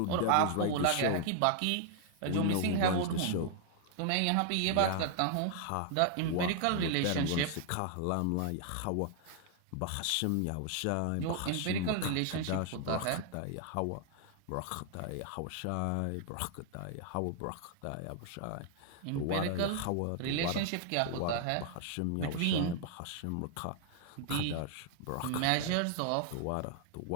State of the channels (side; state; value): both; different; correlation 0.00